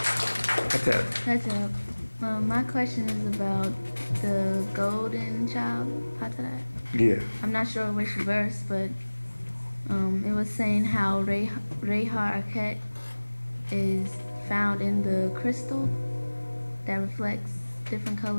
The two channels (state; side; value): inverted; both; correlation -1.00